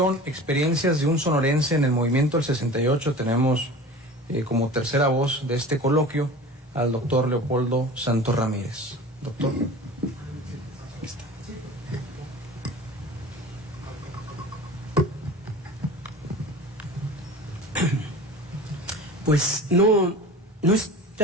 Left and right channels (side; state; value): both; normal; correlation 0.38